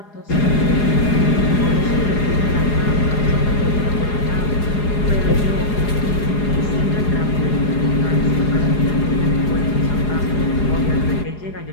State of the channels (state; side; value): late; right; 4.8 ms